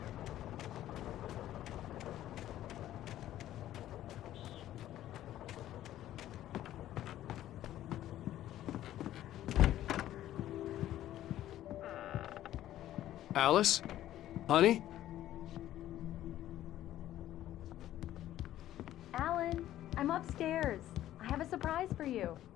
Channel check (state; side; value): quieter; right; 13.1 dB